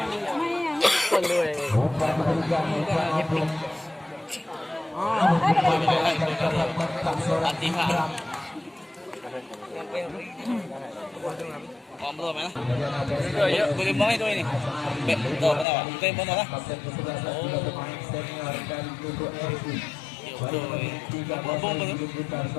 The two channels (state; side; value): drops out; right; at 15.7 s